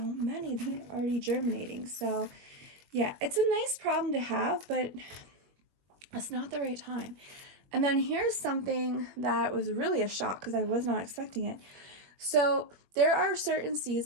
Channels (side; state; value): left; late; 21 ms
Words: that are already germinating. So yeah, it's a nice problem to have, but it's not the right time. And then here's something that was really a shock because I was not expecting it. So there are certain